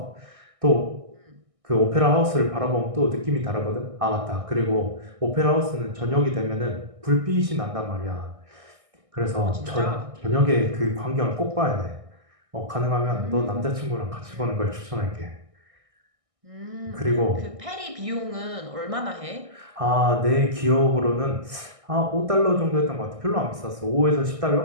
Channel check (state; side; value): late; left; 1.6 ms